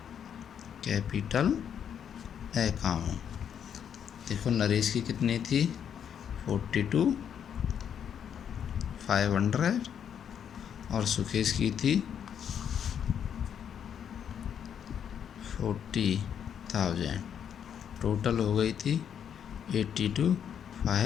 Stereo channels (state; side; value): quieter; right; 8.5 dB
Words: capital account. देखो नरेश की कितनी थी 42,500 और सुकेश की थी 40,000, टोटल हो गई थी